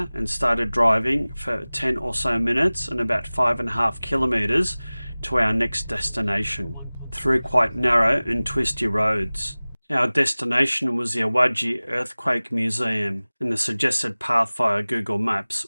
and started driving for 10 or so minutes and about 5.5 kilometres to our next destination, through quite narrow and twisty roads. Our destination was the Awaji Earthquake Museum, and the suggested path via Google Maps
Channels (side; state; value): both; inverted; correlation -0.99